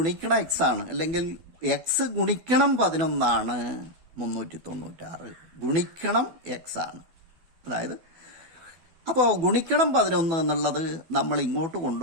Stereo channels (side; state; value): left; late; 12 ms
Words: എക്സ് ആണ്, അല്ലെങ്കിൽ എക്സ് ഗുണിക്കണം 11 ആണ് 396. ഗുണിക്കണം എക്സ് ആണ്. അതായത് അപ്പോൾ ഗുണിക്കണം 11 എന്നുള്ളത് നമ്മൾ ഇങ്ങോട്ട്